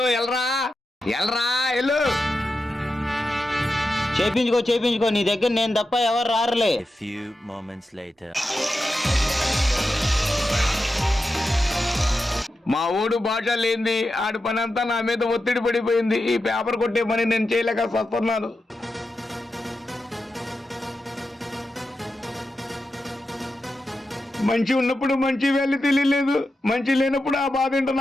ఎల్రా ఎల్రా ఎల్లు. చేపించుకో, నీ దగ్గర నేను తప్ప ఎవరు రారులే. A few moments later. మా ఊడు భాష లేంది, ఆడి పని అంతా నా మీద ఒత్తిడి పడిపోయింది. ఈ పేపర్ కొట్టే పని నేను చేయలేక వస్తున్నాను. మంచి ఉన్నప్పుడు మంచి వాల్యూ తెలియలేదు, మంచి లేనప్పుడు ఆ బాధ ఏంటో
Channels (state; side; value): normal; both; correlation 0.90